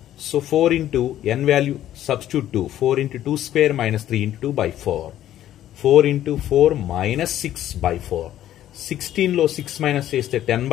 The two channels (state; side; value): quieter; right; 12.3 dB